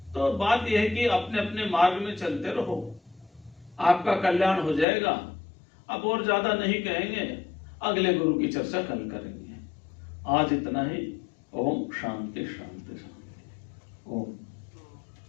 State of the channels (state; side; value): drops out; right; at 4.9 s